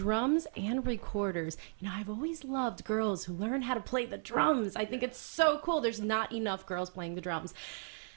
and recorders. You know, I've always loved girls who learn how to play the drums. I think it's so cool. There's not enough girls playing the drums.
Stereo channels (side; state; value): left; silent; 54 dB below the other